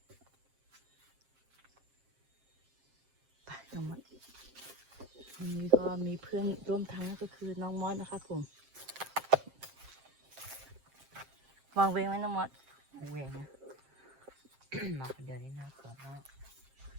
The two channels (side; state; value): left; late; 7.6 ms